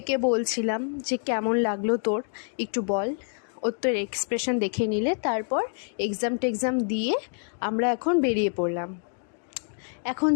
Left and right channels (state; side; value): silent; right; 57 dB below the other